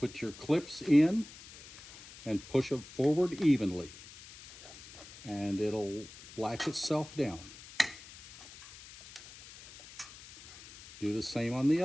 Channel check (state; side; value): noise; left; hiss, 18 dB below the sound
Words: your clips in and push them forward evenly, and it'll latch itself down. Do the same on the